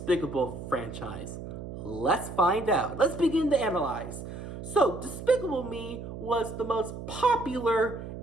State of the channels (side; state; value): right; noise; hum, 9 dB below the sound